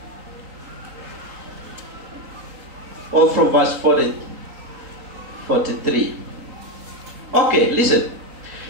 Or from verse 43. Okay, listen.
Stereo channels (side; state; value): left; late; 3.9 ms